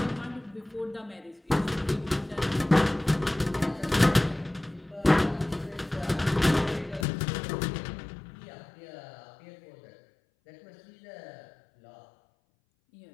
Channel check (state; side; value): drops out; right; at 7.1 s